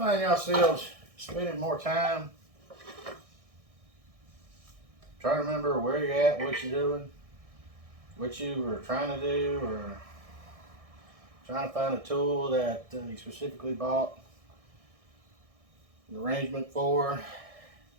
yourselves spending more time trying to remember where you're at, what you're doing, what you were trying to do, or trying to find a tool that you specifically bought an arrangement for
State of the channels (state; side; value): late; left; 1.6 ms